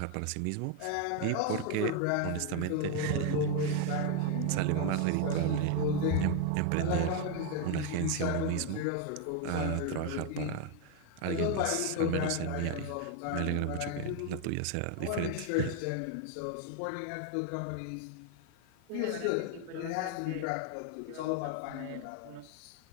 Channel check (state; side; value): different; both; correlation 0.01